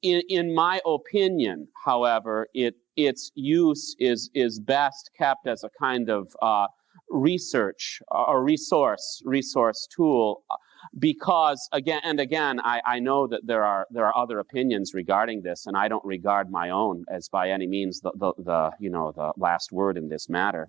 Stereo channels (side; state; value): left; quieter; 12.2 dB